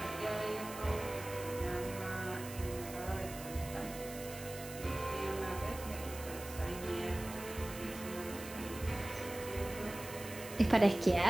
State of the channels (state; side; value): noise; right; hiss, 13 dB below the sound